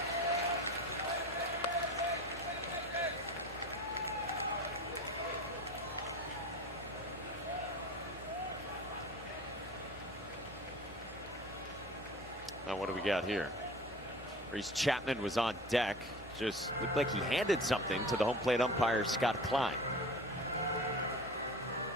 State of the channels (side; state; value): both; normal; correlation 0.36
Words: Now what do we got here? Reese Chapman was on deck. Just looked like he handed something to the home plate umpire, Scott Klein.